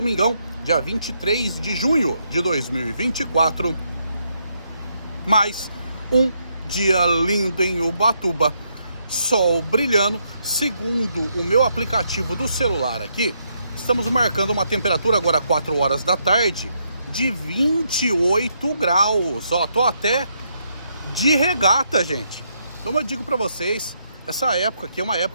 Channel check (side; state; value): both; inverted; correlation -0.77